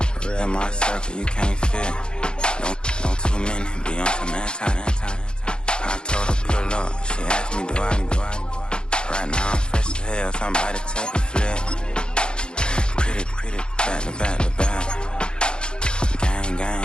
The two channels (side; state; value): right; late; 0.050 ms